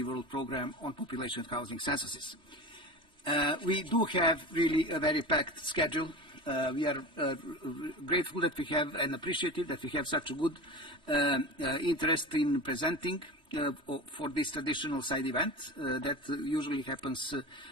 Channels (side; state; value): left; late; 3.1 ms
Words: World Program on Population and Housing Censuses. We do have really a very packed schedule. We are grateful that we have and appreciative that we have such a good interest in presenting for this traditional side event that usually happens